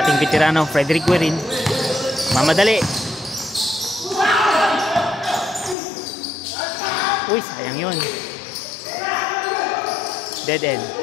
veterano Frederick Guerin. Mamadali. Uy, sayang yun. Dead end.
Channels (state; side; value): drops out; right; at 5.8 s